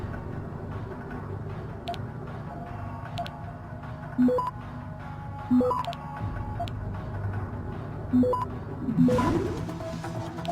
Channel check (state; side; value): identical; both; correlation 1.00